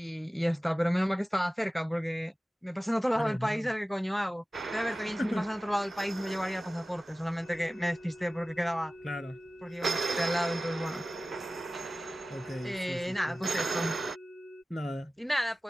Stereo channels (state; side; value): normal; both; correlation 0.96